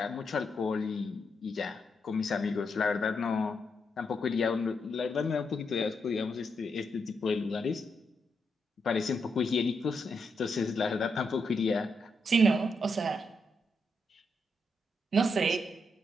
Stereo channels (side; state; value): both; normal; correlation 0.81